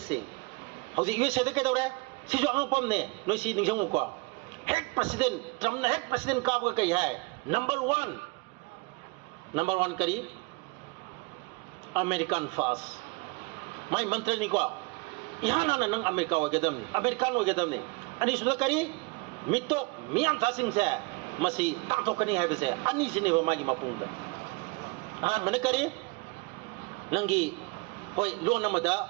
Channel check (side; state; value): left; quieter; 26.9 dB